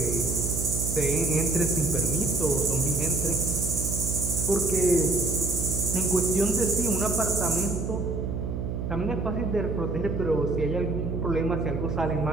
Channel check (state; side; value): noise; right; hum, 3 dB below the sound